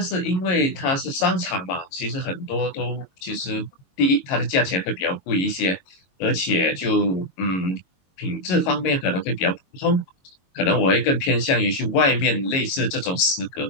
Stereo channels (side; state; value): right; late; 22 ms